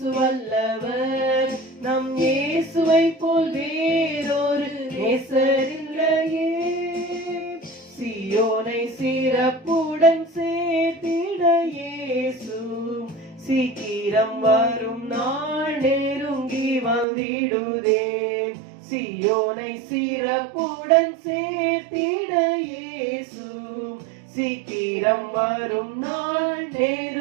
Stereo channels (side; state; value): left; drops out; at 17.1 s